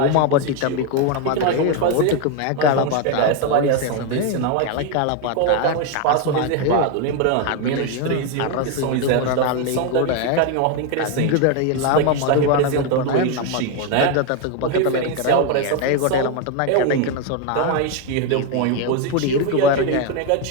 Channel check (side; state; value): both; different; correlation 0.02